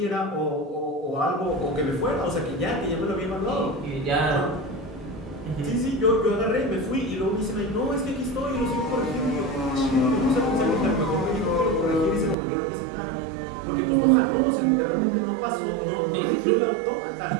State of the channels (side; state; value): left; drops out; at 12.4 s